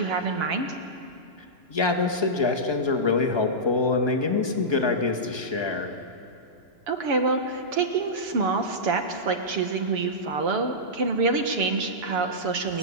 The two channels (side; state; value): left; late; 2.9 ms